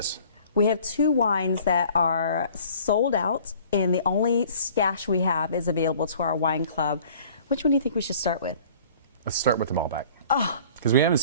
We have 2 wines that are sold out, and the only stash we have is available to our wine club. Which one do you think we should start with? Let's start with the Malbec. Oh, because we haven't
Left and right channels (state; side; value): inverted; both; correlation -0.51